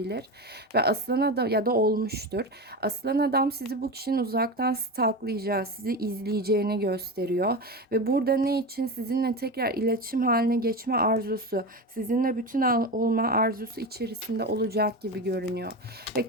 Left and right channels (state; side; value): normal; both; correlation 0.22